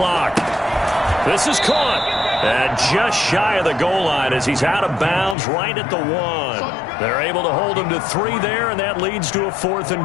This is caught. And just shy of the goal line as he's out of bounds right at the 1. They're able to hold him to 3 there, and that leads to a 4th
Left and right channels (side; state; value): right; drops out; at 5.4 s